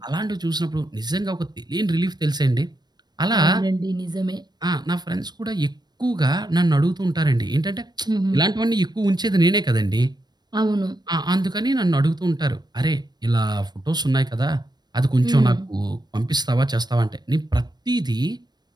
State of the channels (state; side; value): late; left; 0.20 ms